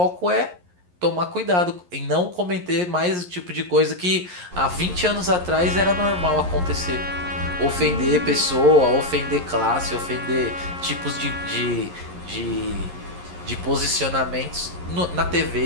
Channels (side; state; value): left; late; 11 ms